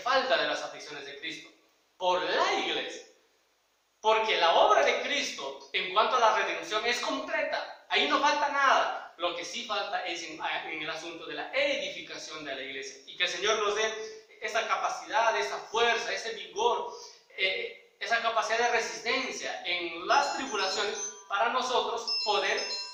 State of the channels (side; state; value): both; identical; correlation 1.00